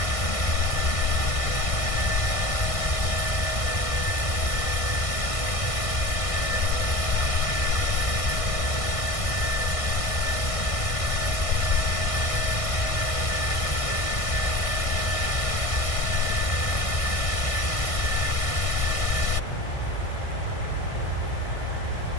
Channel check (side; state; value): right; late; 1.6 ms